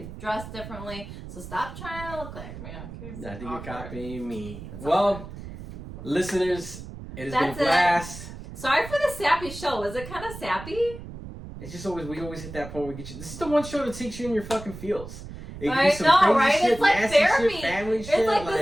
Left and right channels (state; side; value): noise; right; rumble, 12 dB below the sound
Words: dress differently. So stop trying to look like me. I think you're copying me. Well, listeners, it has been a blast. Sorry for the sappy show. Was it kind of sappy? It's just we always hit that point where we get you. This is the one show that takes you in your fucking feels. I know, right? Shit, it's like therapy. Shit, family it's shit, like